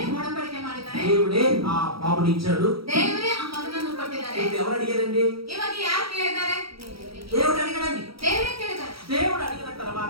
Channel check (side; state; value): left; late; 0.75 ms